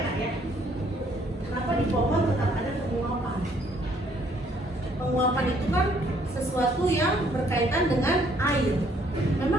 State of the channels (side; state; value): both; normal; correlation 0.65